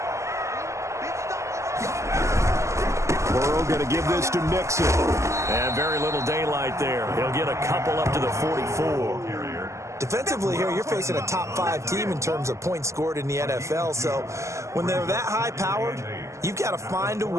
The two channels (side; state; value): left; late; 0.14 ms